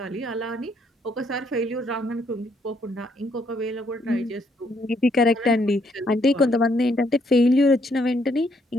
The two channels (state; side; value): normal; both; correlation 0.71